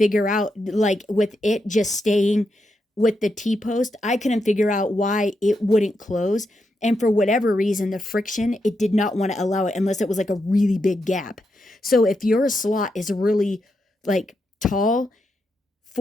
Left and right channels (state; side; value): normal; both; correlation 0.84